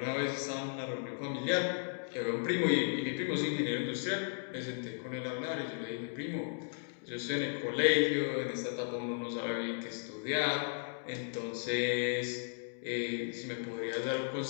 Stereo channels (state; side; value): silent; right; digital silence